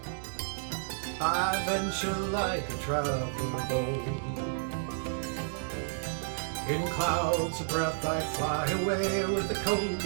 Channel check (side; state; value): left; silent; digital silence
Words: I venture like a traveler bold. In clouds of breath I fly away with the cold